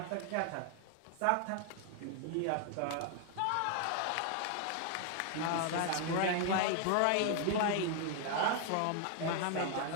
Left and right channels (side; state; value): both; different; correlation 0.00